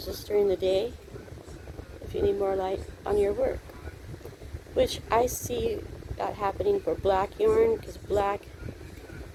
this during the day if you need more light on your work. Which I see that happening for black yarn, because black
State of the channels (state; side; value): identical; both; correlation 1.00